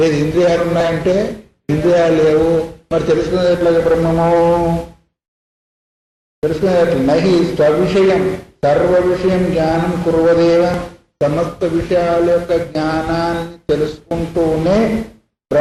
ఇంద్రియాలు ఉన్నాయంటే ఇంద్రియాలు లేవు. మరి తెలుసుకునేది ఎట్లా బ్రహ్మము? తెలుసుకునేది ఎట్లా? నహి స్వవిషయం సర్వ విషయం జ్ఞానం కుర్వదేవ, సమస్త విషయాల యొక్క జ్ఞానాన్ని తెలుసుకుంటూనే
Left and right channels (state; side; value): identical; both; correlation 1.00